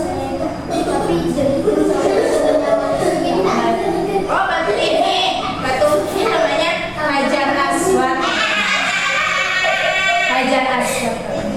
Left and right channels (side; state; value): both; identical; correlation 1.00